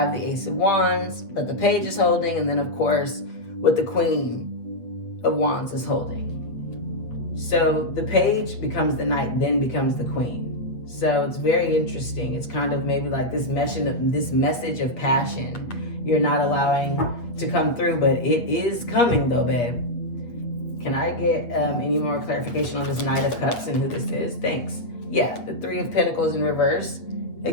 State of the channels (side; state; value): right; late; 8.4 ms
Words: the Ace of Wands that the Page is holding, and then of course, what the Queen of Wands is holding. So the Page becomes the Knight, then becomes the Queen. So it's very interesting. It's kind of maybe like this message of passion you're not allowing to come through, but it is coming though, babe. Can I get any more clarification on this Knight of Cups and who this is? Thanks. Yeah, the Three of Pentacles in reverse.